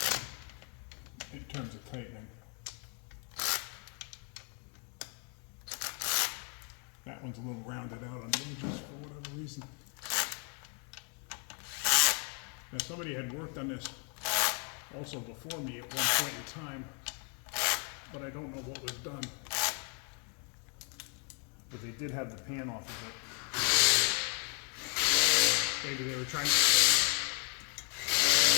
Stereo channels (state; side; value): quieter; right; 38.8 dB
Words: in terms of tightening. That one's a little rounded out on the edges for whatever reason. Now somebody had worked on this also before me at one point in time, but I don't know what was done. But they did have the pan off of it. Maybe they were trying to